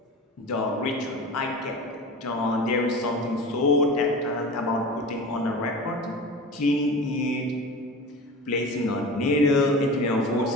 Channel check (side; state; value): both; normal; correlation 0.33